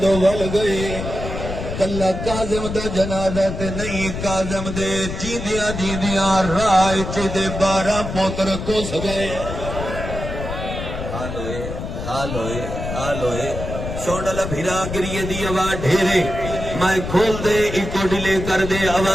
دو ول گئے کلا کاظم دا جنازہ تے نہیں کاظم دے جیندیاں جیندیاں رائے چے 12 پوتر کس گئے حال ہوئے سوڑا بھیرا گریے دی آواز ڈھیرے میں کھول دے ایکو ڈیلے کر دے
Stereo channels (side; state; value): left; noise; rumble, 6 dB below the sound